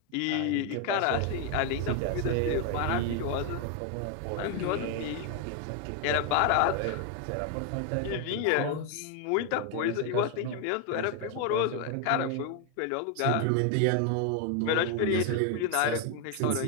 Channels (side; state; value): both; different; correlation 0.01